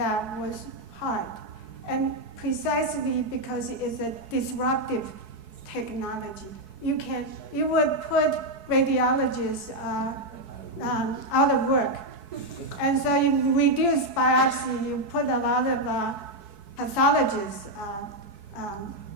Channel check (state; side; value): late; left; 4.6 ms